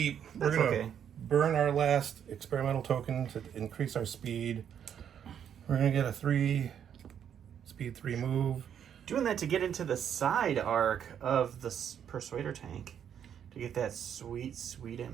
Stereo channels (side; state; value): left; quieter; 8.8 dB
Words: That's we're going to okay. burn our last experimental token to increase our speed. We're going to get a 3 speed 3 move. Doing that to get into the side arc of the Persuader tank to get that sweet, sweet